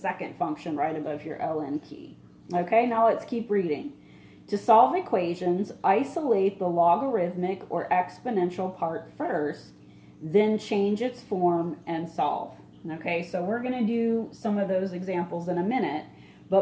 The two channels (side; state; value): both; identical; correlation 1.00